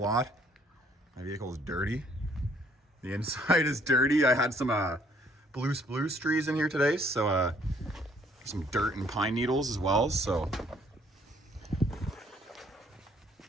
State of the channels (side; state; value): both; normal; correlation 0.63